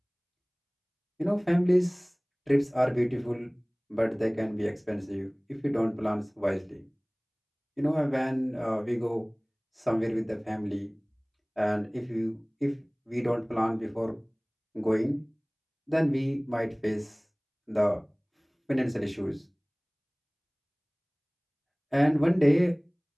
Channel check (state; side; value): identical; both; correlation 1.00